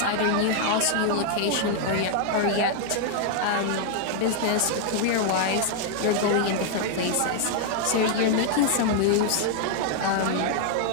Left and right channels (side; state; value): both; different; correlation 0.00